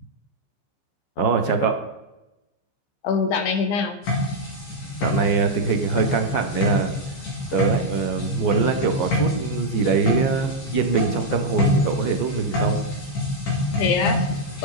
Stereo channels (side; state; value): right; late; 14 ms